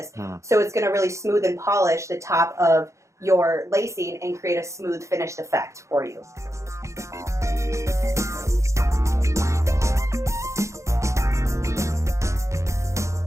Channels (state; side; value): late; left; 0.14 ms